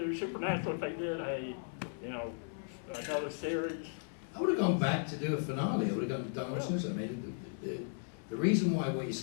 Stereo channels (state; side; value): silent; right; digital silence